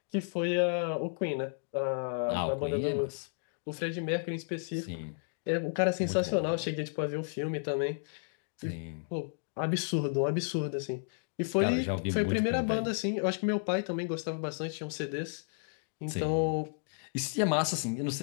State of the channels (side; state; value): right; silent; digital silence